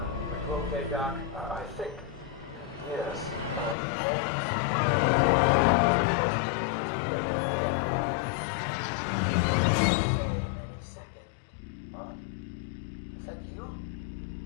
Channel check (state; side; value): drops out; right; at 3.8 s